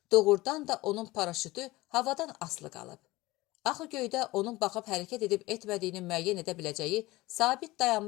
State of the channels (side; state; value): right; quieter; 19.8 dB